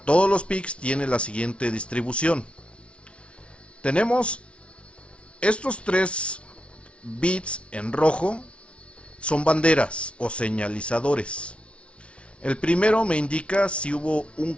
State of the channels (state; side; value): late; right; 0.060 ms